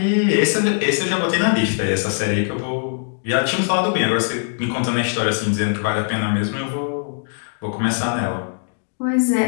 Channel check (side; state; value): right; silent; digital silence